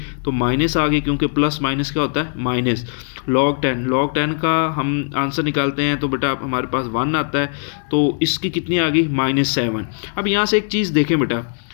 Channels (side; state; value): right; silent; digital silence